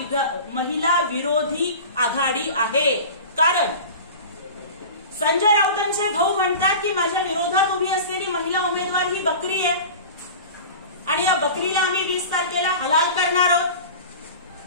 विरोधी आघाडी आहे. कारण संजय राऊतांचे भाऊ म्हणतात की माझ्या विरोधात उभी असलेली महिला उमेदवार ही बकरी आहे आणि या बकरीला आम्ही 20 तारखेला हलाल करणार आहोत.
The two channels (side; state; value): both; inverted; correlation -0.35